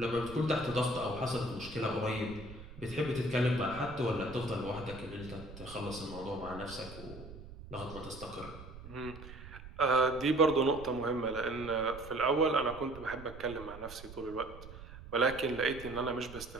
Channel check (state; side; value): noise; right; rumble, 14 dB below the sound